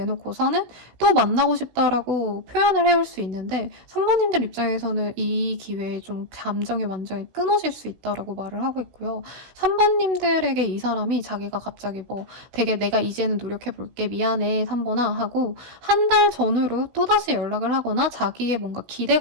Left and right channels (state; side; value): late; left; 16 ms